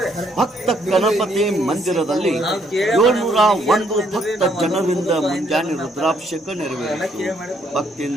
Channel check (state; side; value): normal; both; correlation 0.70